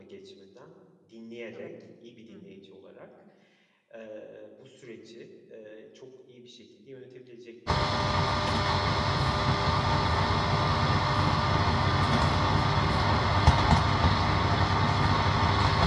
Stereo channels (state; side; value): identical; both; correlation 1.00